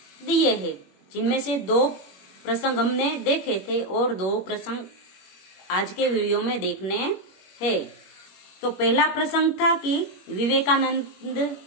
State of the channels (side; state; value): right; late; 21 ms